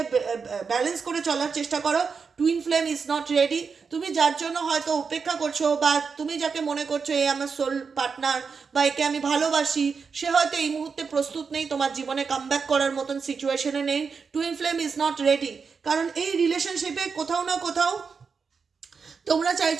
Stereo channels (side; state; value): left; quieter; 5.5 dB